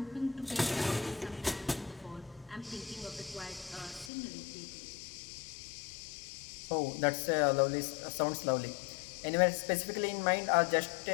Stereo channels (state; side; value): drops out; right; at 4.1 s